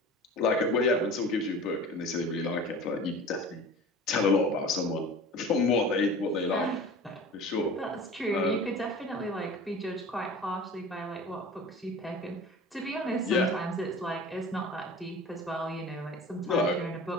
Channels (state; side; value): normal; both; correlation 0.39